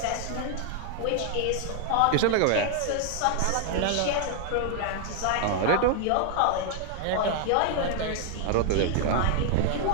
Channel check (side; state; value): both; different; correlation 0.00